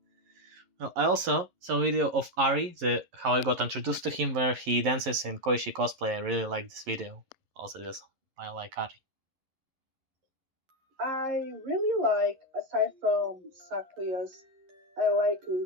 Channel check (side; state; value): left; late; 11 ms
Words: Well, I also saw a video of Ari, how I got introduced to him, where he dances in Koishi cosplay. I really like this video. Also, I like Ari. I really like, aside from Sakuya's, I like